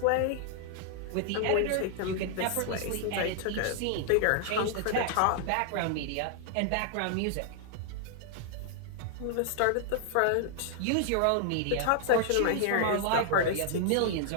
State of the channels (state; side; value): different; both; correlation -0.01